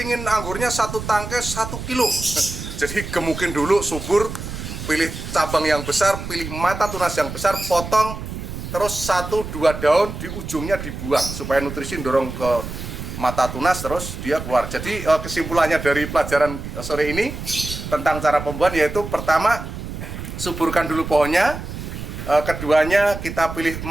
anggurnya 1 tangkai 1 kilo. Jadi gemukin dulu, subur, pilih cabang yang besar, pilih mata tunas yang besar, potong, terus 1-2 daun di ujungnya dibuang supaya nutrisi dorong ke mata tunas, terus dia keluar. Jadi kesimpulannya dari pelajaran sore ini tentang cara pembuahan yaitu pertama, suburkan dulu pohonnya. Keduanya kita pilih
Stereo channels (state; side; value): noise; right; rumble, 8 dB below the sound